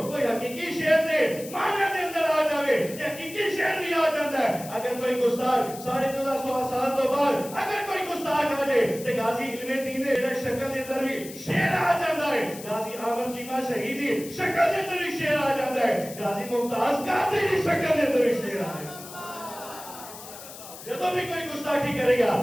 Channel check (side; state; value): left; noise; hiss, 14 dB below the sound